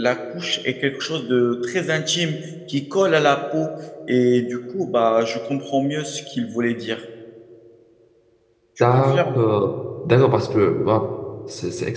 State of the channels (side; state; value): both; identical; correlation 1.00